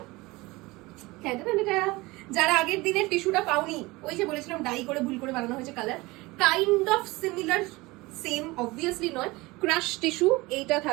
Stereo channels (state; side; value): quieter; left; 22.0 dB